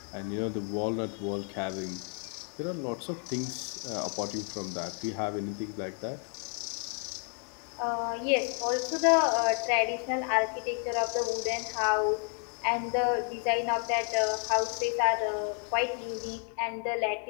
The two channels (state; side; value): quieter; right; 36.9 dB